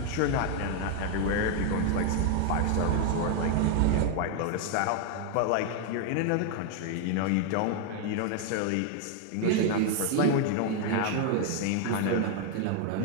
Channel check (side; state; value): both; different; correlation 0.00